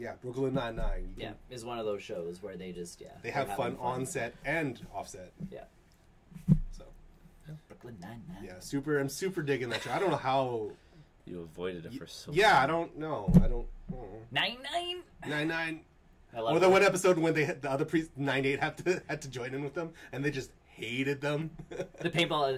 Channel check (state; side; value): identical; both; correlation 1.00